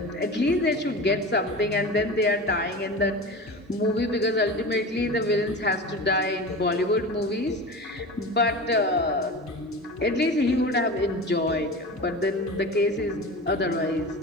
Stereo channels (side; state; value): both; normal; correlation 0.31